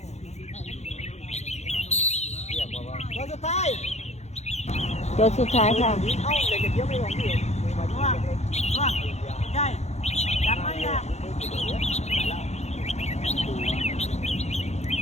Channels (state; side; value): late; right; 0.32 ms